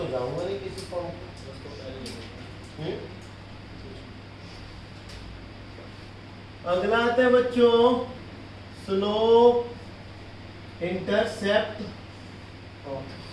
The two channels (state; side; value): identical; both; correlation 1.00